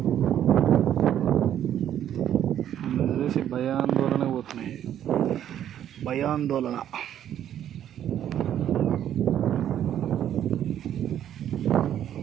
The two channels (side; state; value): left; quieter; 10.6 dB